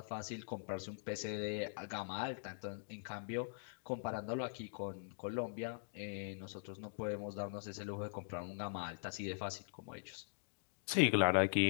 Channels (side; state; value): right; silent; digital silence